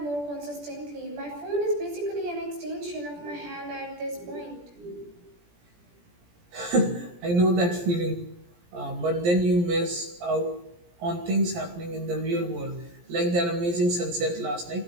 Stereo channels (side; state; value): left; late; 17 ms